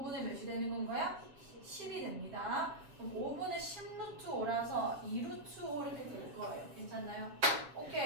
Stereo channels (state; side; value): late; left; 6.7 ms